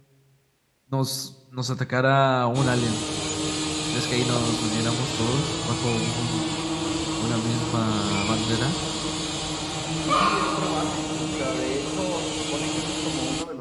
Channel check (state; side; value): identical; both; correlation 1.00